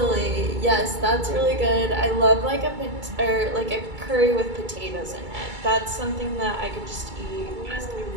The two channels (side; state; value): left; late; 2.2 ms